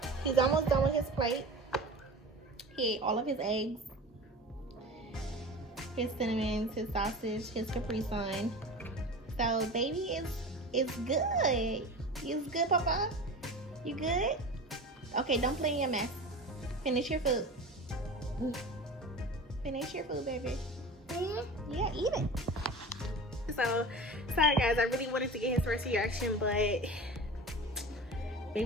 he's almost done with his plate. He ate all of his eggs, his cinnamons, his sausage, his Capri Sun. So baby is good. You good, Papa? You good? Okay, don't play in your mess. Finish your food. Finish your food, baby. Yeah, eat it. So sorry guys, I really wanted to get his first reaction, but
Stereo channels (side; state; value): both; normal; correlation 0.33